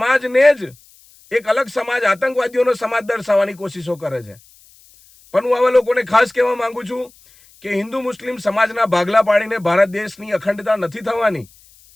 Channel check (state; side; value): noise; left; hiss, 28 dB below the sound